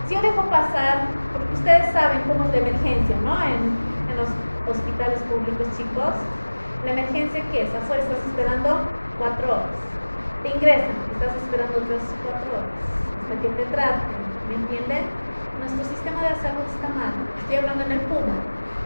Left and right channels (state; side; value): inverted; both; correlation -1.00